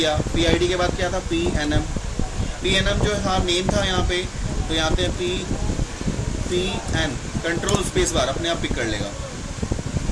PID के बाद क्या था, PNM जो था नेम था यहाँ पे, तो यहाँ पे PN कंट्रोल स्पेस बार अपने आप पिक कर लेगा,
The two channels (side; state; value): both; identical; correlation 1.00